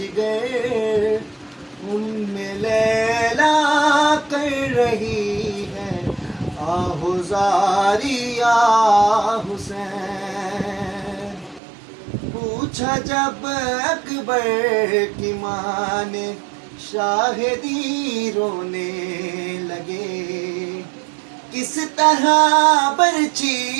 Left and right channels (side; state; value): left; drops out; at 11.6 s